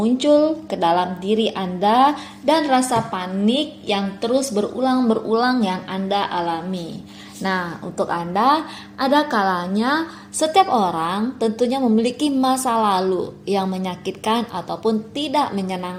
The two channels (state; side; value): identical; both; correlation 1.00